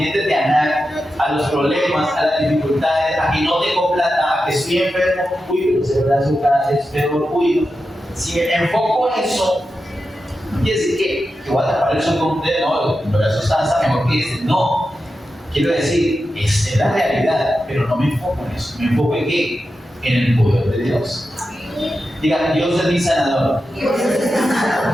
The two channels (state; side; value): normal; both; correlation 0.90